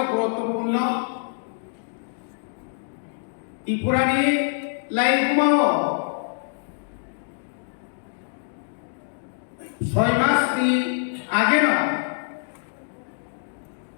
গুরুত্বপূর্ণ ত্রিপুরানি লাইভ ঘুমাও 6 মাস আগে না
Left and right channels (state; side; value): silent; right; digital silence